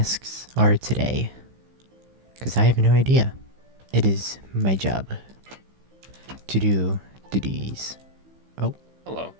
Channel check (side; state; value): left; late; 15 ms